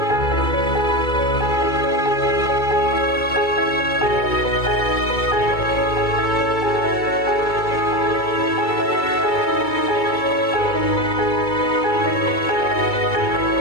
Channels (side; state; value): right; late; 2.3 ms